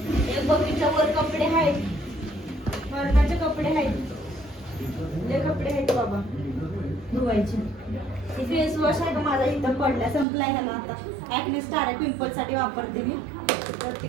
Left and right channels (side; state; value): left; drops out; at 10.2 s